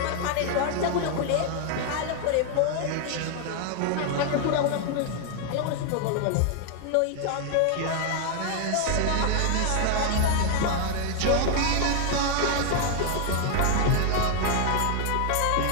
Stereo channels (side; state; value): both; different; correlation 0.00